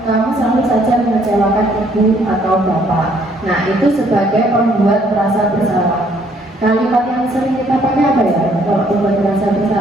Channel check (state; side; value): normal; both; correlation 0.65